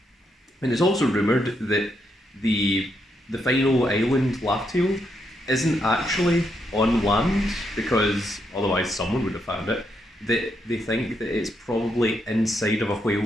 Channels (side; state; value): both; normal; correlation 0.79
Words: And it's also rumoured that the final island, Laugh-Tale, isn't actually on land, because otherwise someone would have found it. That they think that it's probably inside of a